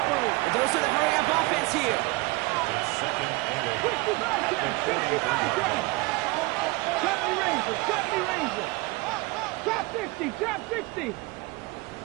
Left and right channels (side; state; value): left; quieter; 24.0 dB